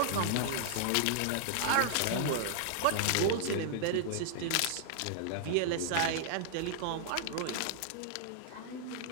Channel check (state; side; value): different; both; correlation -0.01